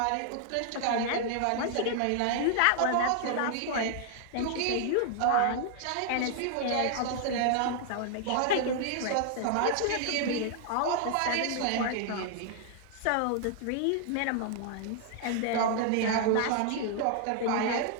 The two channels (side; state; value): both; different; correlation 0.00